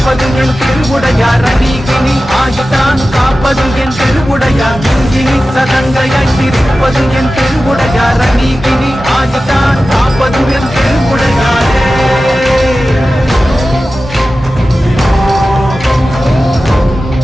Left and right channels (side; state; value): both; normal; correlation 0.94